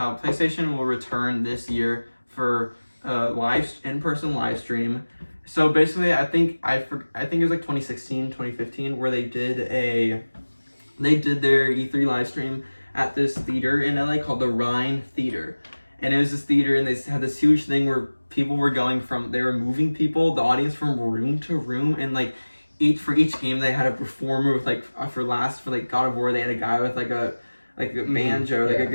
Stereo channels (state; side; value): inverted; both; correlation -1.00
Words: will return this year for in-person live stream. So basically, I think it was like 2016, 2015, where they did their E3 live stream at this theater in LA called the Rhine Theater. And it was this theater, and they had this huge thing where people were they were moving the audience from room to room, and like for each game they had a performer with for God of War they had a guy with a banjo, a